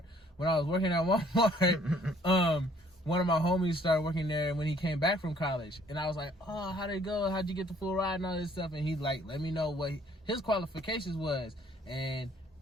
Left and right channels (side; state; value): both; normal; correlation 0.60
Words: when I was working at Walmart, one of my homies started working there when he came back from college, and I was like, oh, how'd it go? How'd you get the full ride and all this stuff? And he like let me know what his qualifications was, and